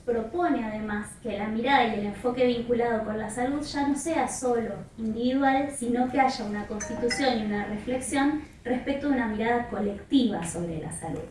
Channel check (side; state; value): both; identical; correlation 1.00